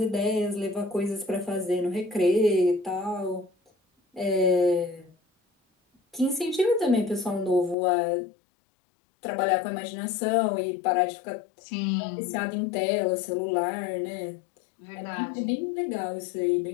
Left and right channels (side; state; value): right; drops out; at 7.8 s